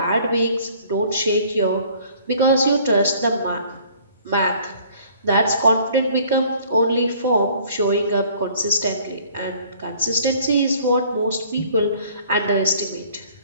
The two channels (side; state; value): both; inverted; correlation -0.55